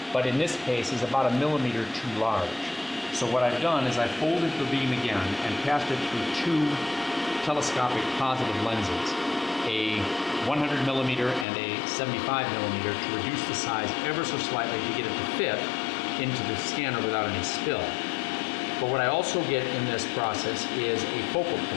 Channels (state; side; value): drops out; right; at 11.5 s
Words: but in this case is about 1 millimeter too large. So what I've done is I folded the beam again and passed it through 2 telescopic positive lenses, a 100 millimeter and a 75 millimeter, to reduce the size ever so slightly to get it to fit into the scanner without any spill. But what I also get in this process is a focal